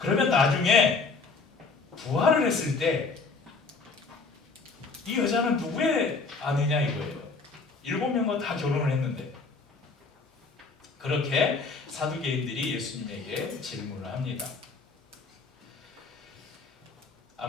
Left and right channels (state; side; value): quieter; right; 4.2 dB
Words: 그러면 나중에 부활을 했을 때 이 여자는 누구의 아내냐 이거예요. 7명과 다 결혼을 했는데. 그렇게 사두개인들이 예수님에게 질문을 합니다.